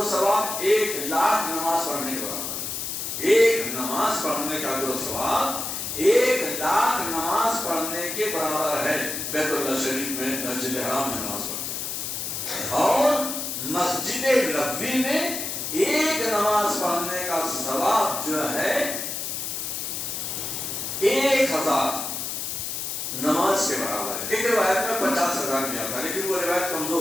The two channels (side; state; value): left; noise; hiss, 4 dB below the sound